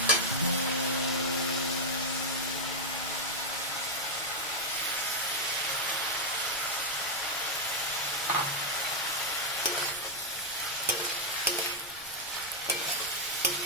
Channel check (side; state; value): right; noise; rumble, 23 dB below the sound